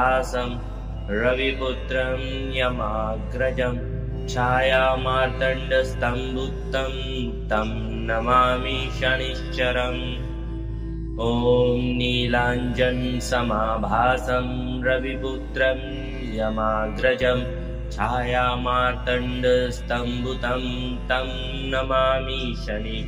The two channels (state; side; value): identical; both; correlation 1.00